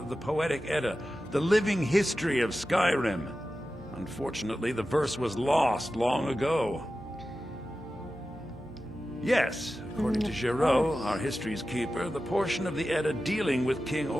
the Poetic Edda, the living history of Skyrim. Unfortunately, the verse was lost long ago. Yes, according to Giraud, our history's keeper, the portion of the Edda dealing with King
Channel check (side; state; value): both; normal; correlation 0.93